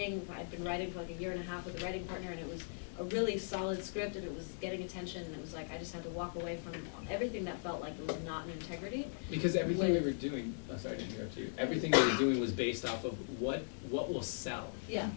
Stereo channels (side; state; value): right; silent; digital silence